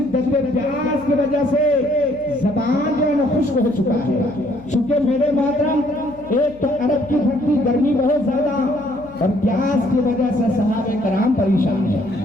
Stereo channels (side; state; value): left; noise; hum, 23 dB below the sound